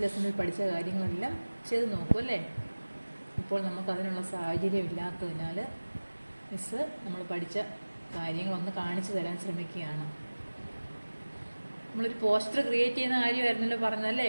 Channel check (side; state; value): both; inverted; correlation -1.00